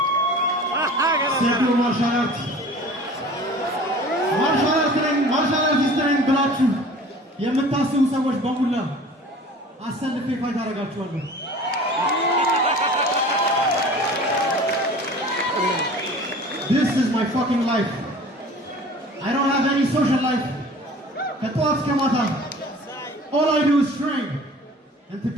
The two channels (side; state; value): both; normal; correlation 0.44